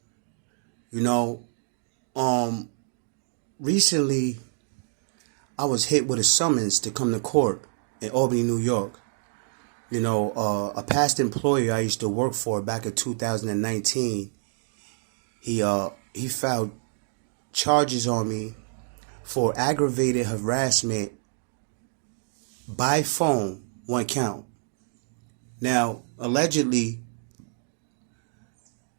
You know, recently, I was hit with a summons to come to court in Albany, New York. A past employer I used to work for back in 2019, he filed charges on me for aggravated harassment by phone, one count. Now, allegedly,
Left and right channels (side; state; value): left; silent; digital silence